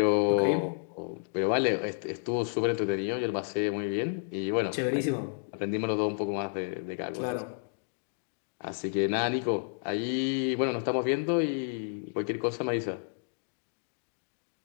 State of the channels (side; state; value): right; silent; digital silence